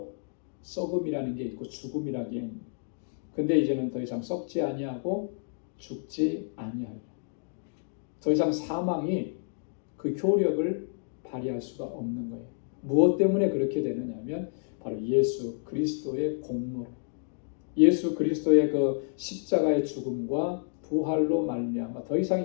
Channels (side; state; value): right; silent; digital silence